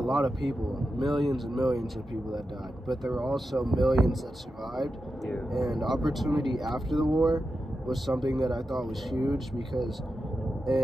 of people, millions and millions of people that died, but there were also millions that survived. Yeah. And opportunity after the war was something that I thought was huge, because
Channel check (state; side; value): normal; both; correlation 0.90